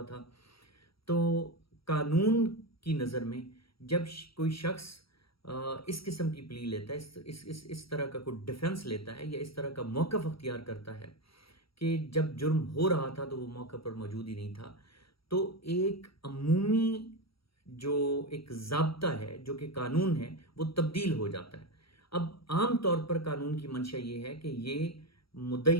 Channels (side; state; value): right; late; 0.75 ms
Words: था। तो कानून की नज़र में जब कोई शख्स इस किस्म की प्ली लेता है, इस तरह का कोई डिफेंस लेता है या इस तरह का मौक़िफ़ अख्तियार करता है कि जब जुर्म हो रहा था तो वो मौके पर मौजूद ही नहीं था, तो एक अमूमी जो एक ज़ाब्ता है, जो कि कानून है, वो तब्दील हो जाता है। अब आम तौर पर कानून की मंशा ये है कि ये